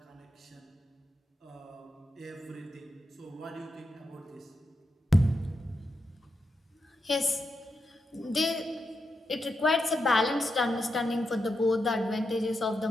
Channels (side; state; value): both; normal; correlation 0.86